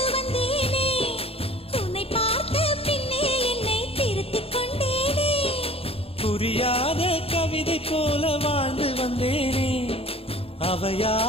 வந்தேனே, உன்னை பார்த்த பின்னே என்னை திருத்திக் கொண்டேனே. புரியாத கவிதை போல வாழ்ந்து வந்தேனே,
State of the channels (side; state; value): right; late; 0.28 ms